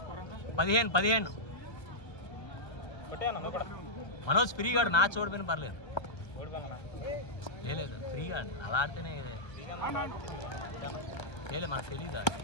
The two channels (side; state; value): right; late; 1.2 ms